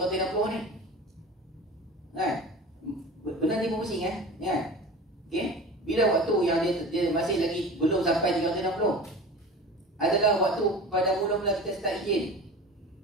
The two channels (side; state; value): both; normal; correlation 0.36